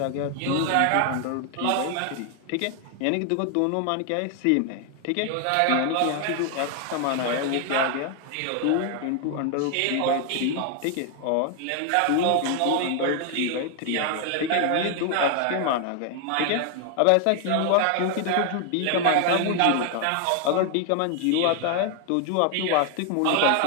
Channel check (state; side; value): different; both; correlation 0.00